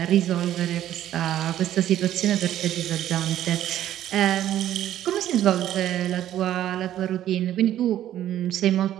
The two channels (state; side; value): quieter; left; 12.2 dB